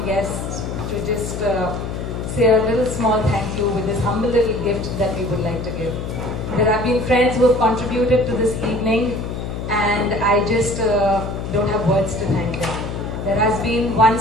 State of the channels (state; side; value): noise; left; hum, 5 dB below the sound